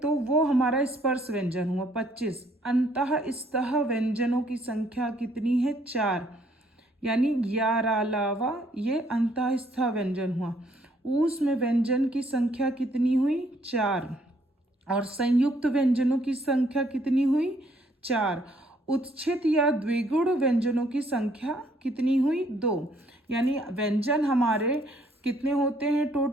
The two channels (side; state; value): both; normal; correlation 0.66